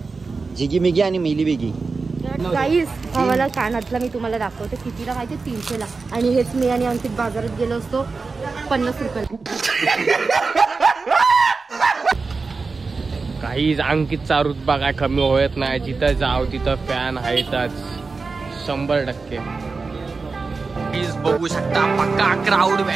जिगी मिगी आणि मिली बिगी. गाईस भावाला कानातला मी तुम्हाला दाखवते कितीला माहिती, 300 ला. आणि हेच मी आणि अंकित बाजारात गेलो असतो 50 रुपयाला. काहीच अंकितचा रुतबा काय कमी होत नाही. जिथं जाव तिथं फॅन आहेतच 100%. प्लीज बघू शकता पक्का क्राऊड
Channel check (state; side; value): quieter; left; 4.3 dB